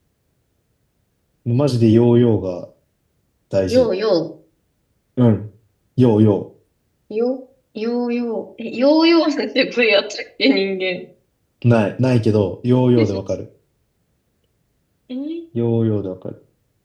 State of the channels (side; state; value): both; identical; correlation 1.00